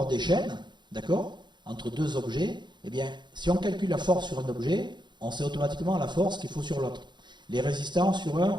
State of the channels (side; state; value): left; late; 0.22 ms